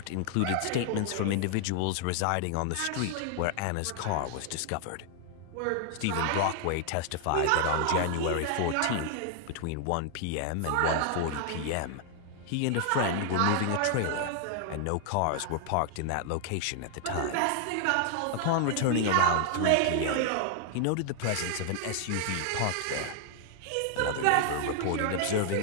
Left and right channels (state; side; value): different; both; correlation 0.00